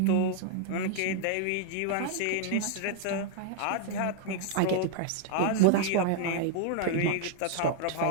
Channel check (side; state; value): both; different; correlation 0.00